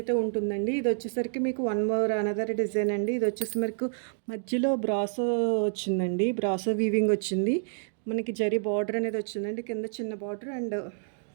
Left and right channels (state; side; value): silent; left; digital silence